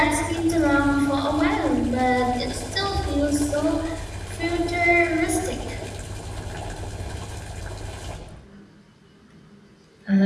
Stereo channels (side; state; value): both; identical; correlation 1.00